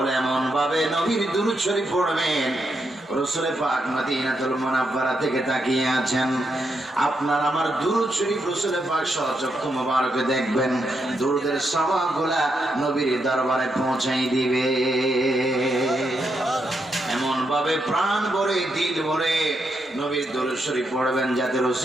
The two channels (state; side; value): normal; both; correlation 0.82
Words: এমন ভাবে নবীর দরুদ শরীফ পড়বেন, রসুলে পাক মদিনাতুল মুনাওয়ারা থেকে তাকিয়ে আছেন, আপনার আমার দুরূদ শরীফ রসুলে পাক সচক্ষু মোবারকে দেখবেন, দুরূদের সওয়াবগুলা নবীর দরবারে পৌঁছাই দিবে। এমন ভাবে প্রাণ ভরে দিল ভরে নবীর দরুদ শরীফ পড়বেন যাতে